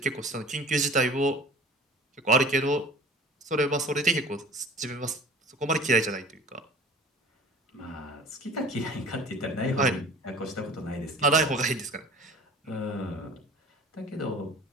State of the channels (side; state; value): both; normal; correlation 0.44